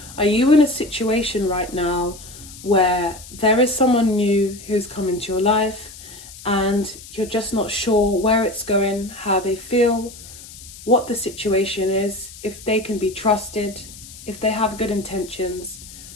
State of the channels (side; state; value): left; noise; hiss, 17 dB below the sound